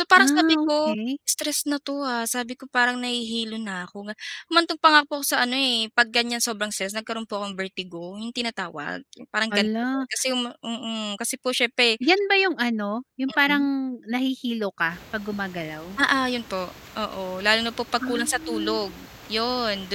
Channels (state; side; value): identical; both; correlation 1.00